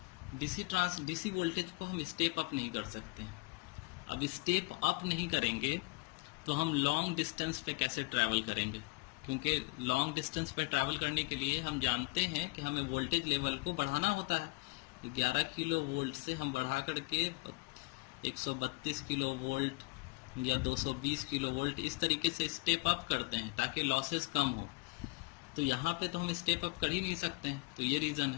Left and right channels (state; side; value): quieter; right; 27.1 dB